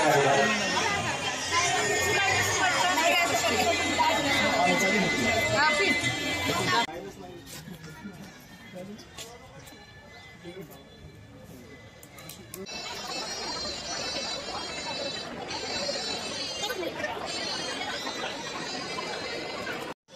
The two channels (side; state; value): both; identical; correlation 1.00